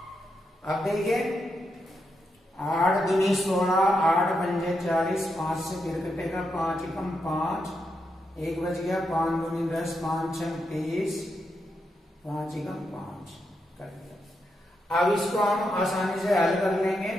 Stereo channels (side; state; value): both; normal; correlation 0.83